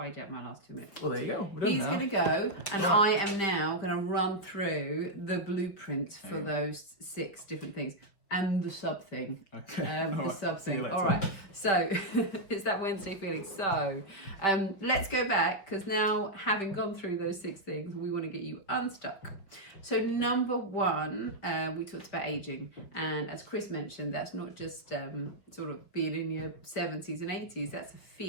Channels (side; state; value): right; late; 5.4 ms